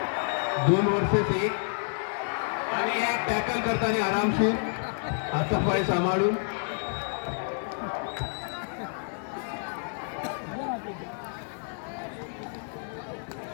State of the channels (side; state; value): right; silent; 58 dB below the other